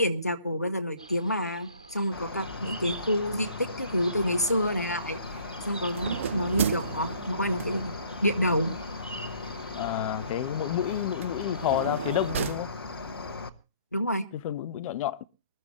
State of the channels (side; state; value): both; inverted; correlation -0.57